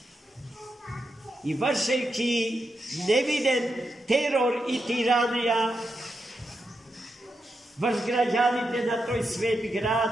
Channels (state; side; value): normal; both; correlation 0.86